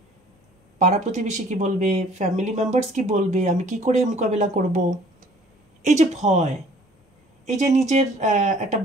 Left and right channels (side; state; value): both; normal; correlation 0.55